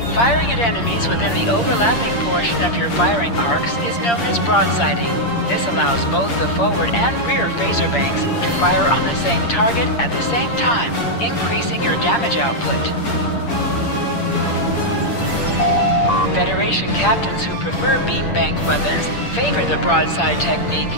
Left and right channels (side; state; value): right; late; 8.6 ms